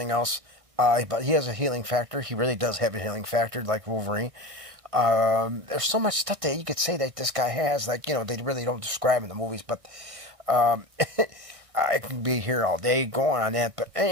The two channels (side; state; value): left; late; 1.6 ms